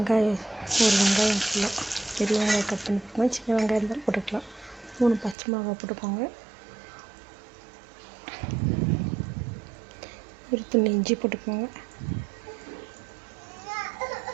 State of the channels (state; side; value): drops out; left; at 5.4 s